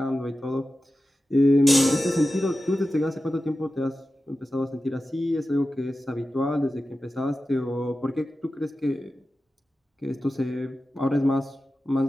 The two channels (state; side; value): normal; both; correlation 0.93